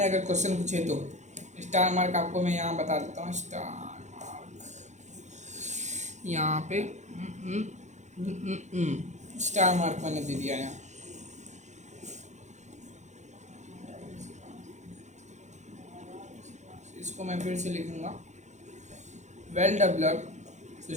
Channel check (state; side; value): late; left; 0.34 ms